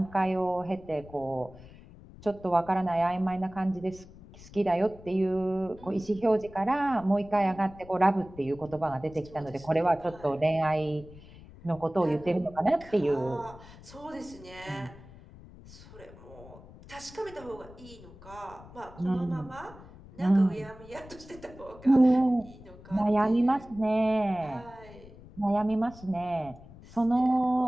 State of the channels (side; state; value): left; noise; rumble, 19 dB below the sound